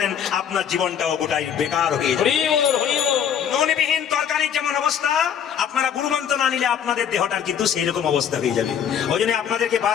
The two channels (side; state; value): right; quieter; 8.5 dB